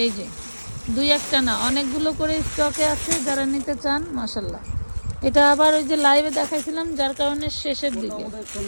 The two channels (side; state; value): both; inverted; correlation -1.00